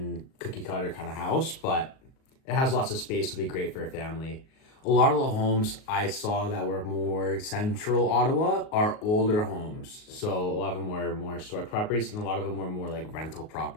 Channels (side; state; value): right; late; 38 ms